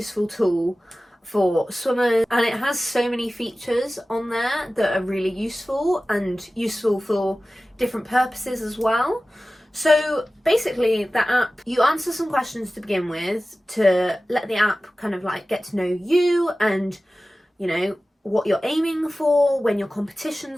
tool for swimmers, and it has so many features on there that are really useful, and useful for different purposes as well. So basically, the app, you answer some questions to begin with to let the app kind of like get to know you and, you know, what you're aiming for, when your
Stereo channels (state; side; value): normal; both; correlation 0.96